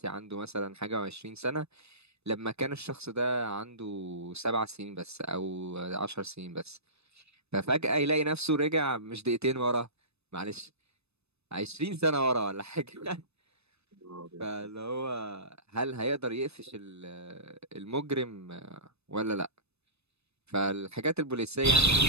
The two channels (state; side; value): late; left; 0.79 ms